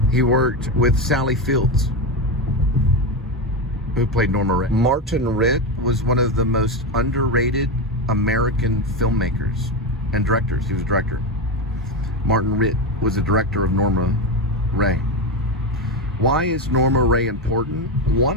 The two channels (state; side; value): normal; both; correlation 0.14